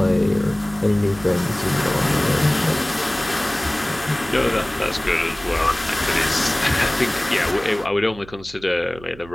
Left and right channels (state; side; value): noise; right; hum, 20 dB below the sound